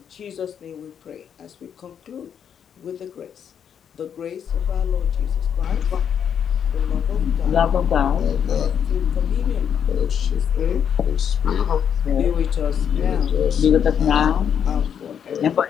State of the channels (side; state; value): right; quieter; 8.2 dB